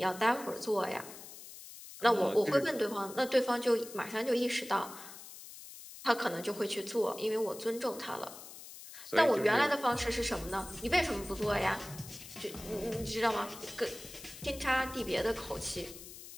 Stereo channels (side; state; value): left; noise; hiss, 15 dB below the sound